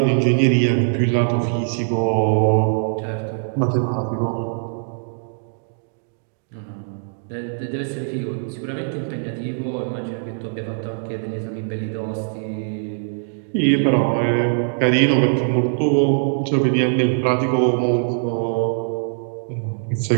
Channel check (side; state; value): left; silent; digital silence